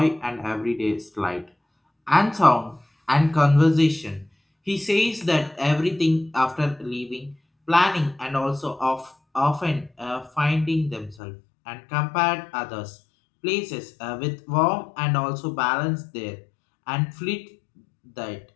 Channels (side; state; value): right; drops out; at 11.2 s